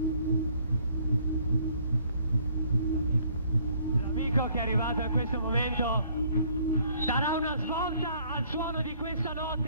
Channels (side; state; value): both; inverted; correlation -0.62